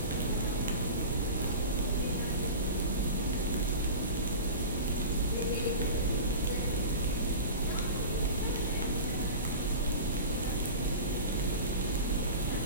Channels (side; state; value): both; inverted; correlation -0.32